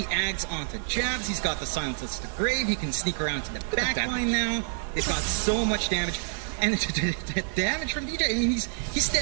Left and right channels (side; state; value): left; silent; digital silence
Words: Ags onto Jabs. He's got the Silences to Grave. He can sneak around to the back line now. They've got so much damage. And the damage from DJ, I mean, he's